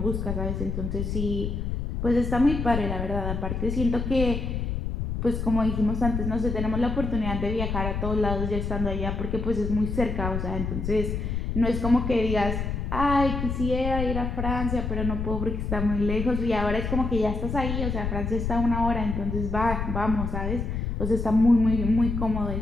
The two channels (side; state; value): left; noise; rumble, 3 dB below the sound